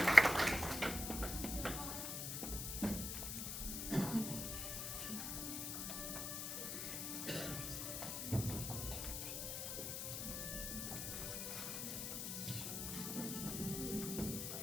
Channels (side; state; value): left; noise; hiss, 3 dB below the sound